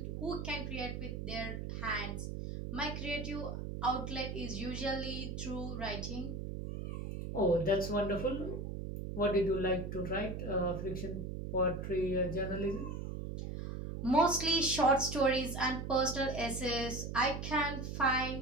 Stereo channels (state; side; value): noise; right; hum, 5 dB below the sound